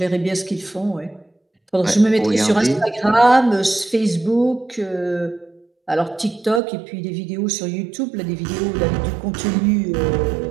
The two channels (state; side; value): drops out; left; at 6.6 s